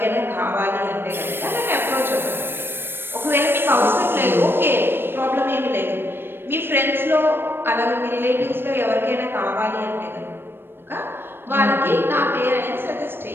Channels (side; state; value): left; late; 0.10 ms